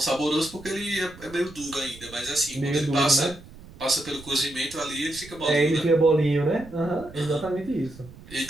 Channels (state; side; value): noise; right; rumble, 19 dB below the sound